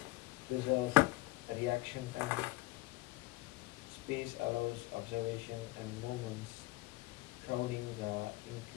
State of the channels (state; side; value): quieter; right; 20.1 dB